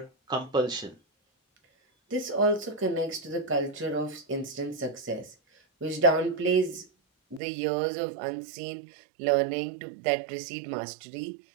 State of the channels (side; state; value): left; drops out; at 7.4 s